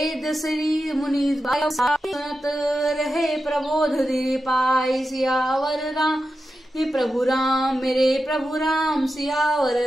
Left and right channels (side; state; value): both; normal; correlation 0.90